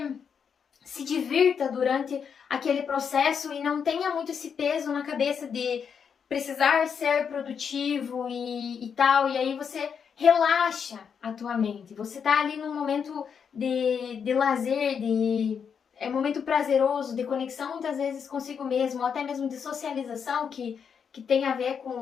se divirta durante aquele processo e não tenha muito esse peso na cabeça de precisar ser produtivo e tal, e aí você relaxa a tua mente. Você tá ali num momento de lazer, é um momento prazeroso, de conexão muitas vezes consigo mesmo, ou até mesmo de socialização, que tem a ver com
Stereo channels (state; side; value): quieter; right; 6.9 dB